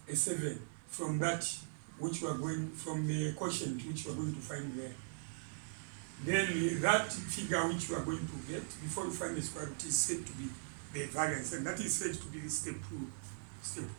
a 7 from that which we are going, from the quotient which we are going to find there. Then that figure which you are going to get before you find the square root is said to be the variance, and that is said to be step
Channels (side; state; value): left; silent; 51 dB below the other